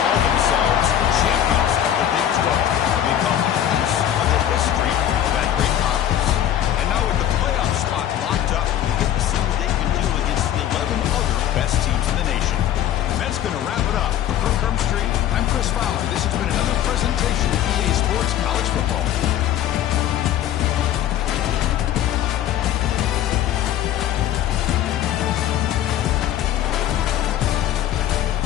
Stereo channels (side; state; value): right; quieter; 11.2 dB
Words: themselves champions of the Big 12 and become a piece of the history of that great conference. And now with the playoff spot locked up, you get to see what they can do against the 11 other best teams in the nation. And that's going to wrap it up. For Kirk Herbstreit, I'm Chris Fowler. This has been another presentation of EA Sports College Football.